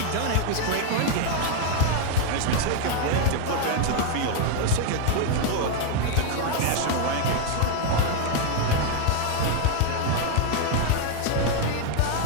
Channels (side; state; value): both; different; correlation 0.01